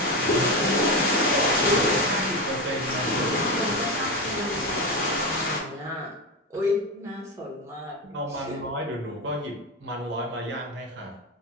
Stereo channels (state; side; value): normal; both; correlation 0.17